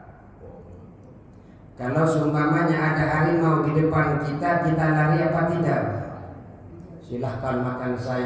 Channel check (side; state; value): both; identical; correlation 1.00